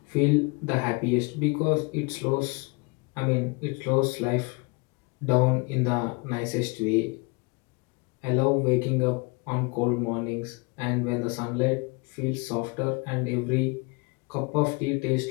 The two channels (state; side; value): quieter; right; 29.9 dB